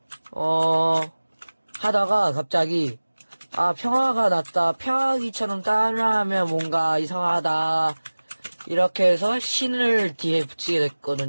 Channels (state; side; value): inverted; both; correlation -1.00